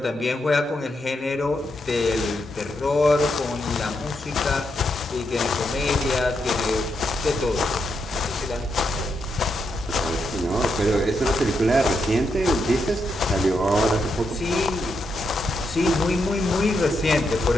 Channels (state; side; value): normal; both; correlation 0.82